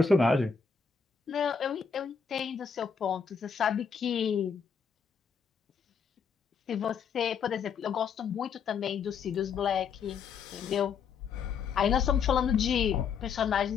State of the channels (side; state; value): right; quieter; 6.3 dB